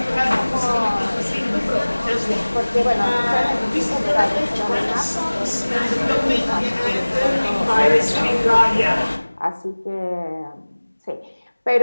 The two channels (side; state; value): both; inverted; correlation -1.00